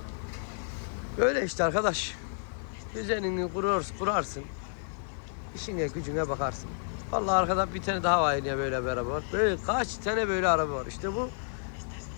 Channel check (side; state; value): right; silent; digital silence